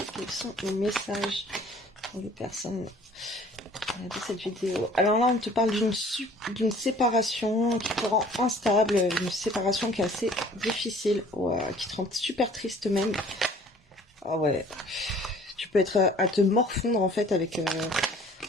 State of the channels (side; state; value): both; normal; correlation 0.52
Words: quels sont les messages pour les personnes de cette vidéo? Alors là, on te parle d'une séparation qui te rend instable, une séparation qui est assez difficile, qui te rend super triste même. Ah ouais, tu peux être à te morfondre en fait avec